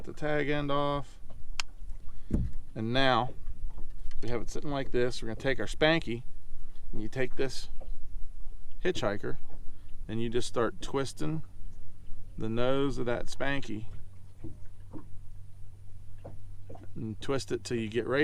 the tag end off. And now we have it sitting like this. We're gonna take our Spanky, and you take this hitchhiker and you just start twisting the nose of that Spanky, and twist it till you get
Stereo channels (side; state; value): both; identical; correlation 1.00